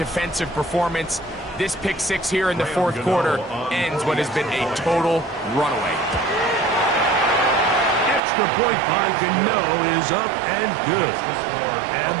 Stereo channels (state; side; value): drops out; left; at 8.2 s